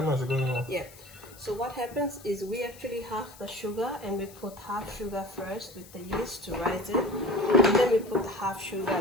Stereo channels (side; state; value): left; noise; hiss, 21 dB below the sound